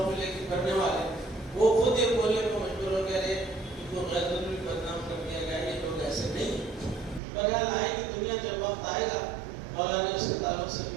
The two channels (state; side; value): drops out; left; at 7.2 s